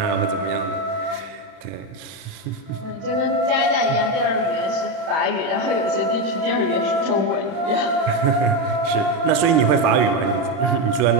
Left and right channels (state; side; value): late; left; 31 ms